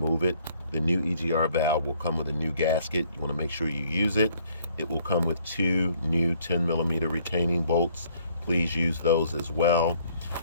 it. The new EGR valve will come with a new gasket. You want to make sure you use it. It will come with 2 new 10mm retaining bolts. Please use those as well.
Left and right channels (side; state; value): both; inverted; correlation -0.62